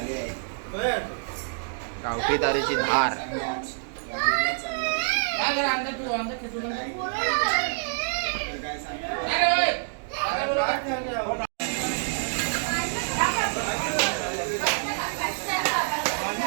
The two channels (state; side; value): silent; left; digital silence